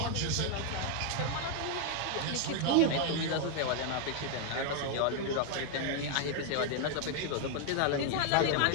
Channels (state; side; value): different; both; correlation 0.00